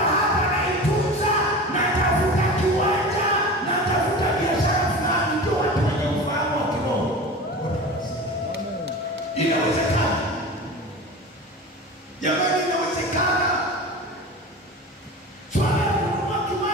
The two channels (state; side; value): normal; both; correlation 0.33